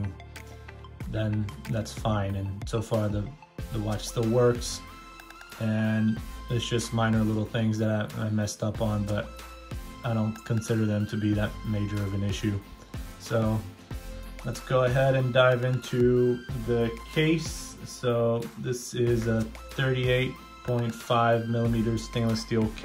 then that's fine. And so far the watch still works, and it's just minor little things that I messed up on, but I don't consider them to be that major of an issue. So let's go ahead and dive into the case. So this is a 38.5 millimeter stainless steel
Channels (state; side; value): identical; both; correlation 1.00